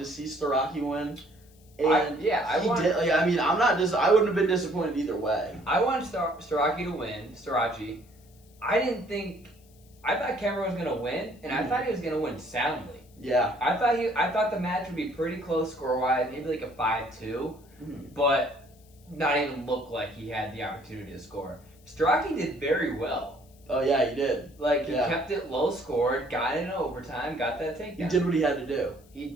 see Soraki win. And he did. I wouldn't have been disappointed either way. I wanted Soraki to win. I thought Kemmer was going to win, and I thought he was going to win soundly. Yeah. I thought the match would be pretty close score-wise, maybe like a 5-2, but not even look like he had the opportunity to score. Soraki did very well. Oh, yeah, he did. He kept it low scored, got into overtime, got that takedown. He did what he had to do. He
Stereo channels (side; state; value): left; noise; hiss, 29 dB below the sound